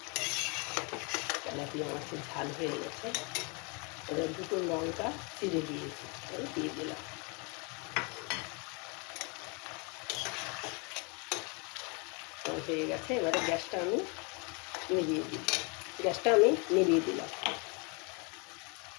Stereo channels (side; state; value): right; quieter; 32.5 dB